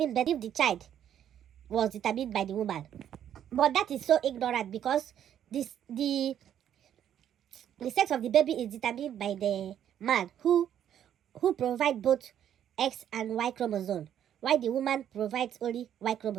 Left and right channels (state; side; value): quieter; left; 10.1 dB